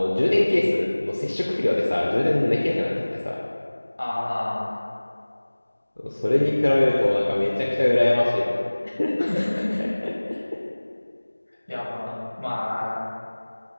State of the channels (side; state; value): both; inverted; correlation -1.00